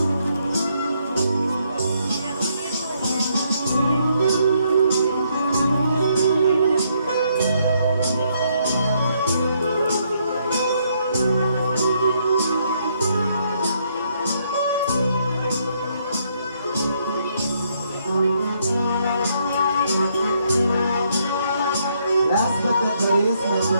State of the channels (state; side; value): inverted; both; correlation -0.73